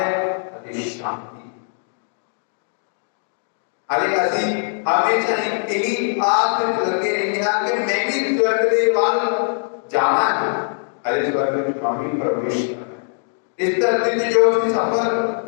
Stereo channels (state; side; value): silent; right; digital silence